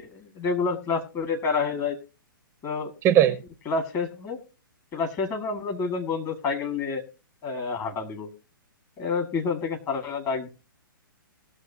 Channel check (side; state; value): both; normal; correlation 0.11